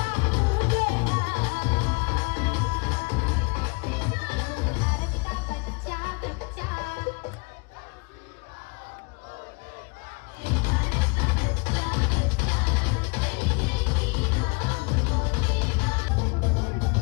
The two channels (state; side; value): quieter; right; 30.4 dB